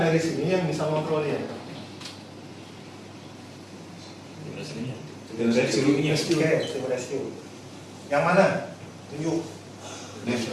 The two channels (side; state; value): both; identical; correlation 1.00